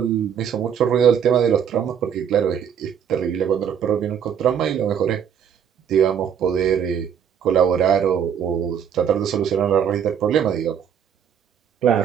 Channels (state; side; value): quieter; left; 8.2 dB